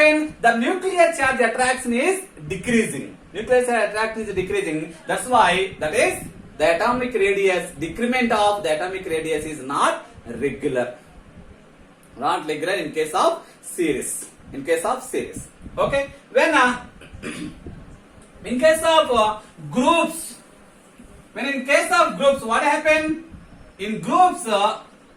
The nuclear charge attraction is decreasing. Nuclear charge attraction is decreasing. That's why that is the atomic radius, decrement of the atomic radius is not regular. Not regular in case of series. In case of series. Okay. When in case of groups, when in case of groups, what happened? In groups,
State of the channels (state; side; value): identical; both; correlation 1.00